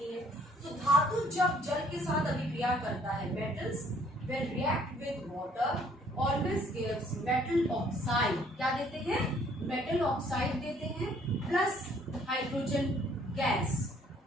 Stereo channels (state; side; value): normal; both; correlation 0.62